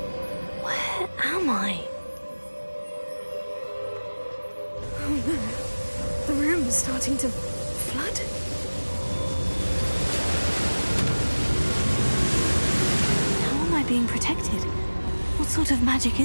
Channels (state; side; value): inverted; both; correlation -1.00